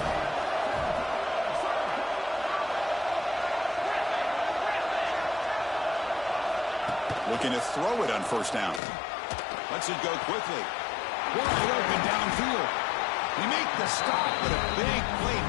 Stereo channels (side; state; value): right; drops out; at 8.8 s